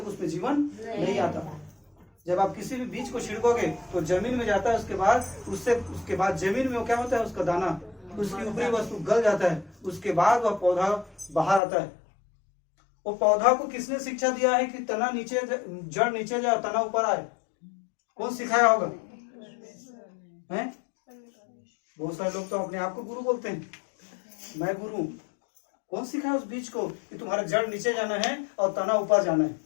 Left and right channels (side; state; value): right; drops out; at 11.6 s